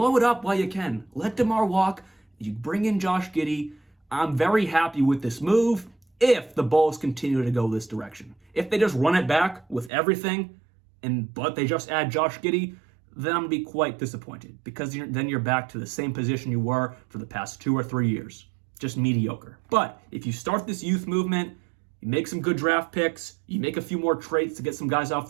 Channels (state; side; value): drops out; left; at 9.9 s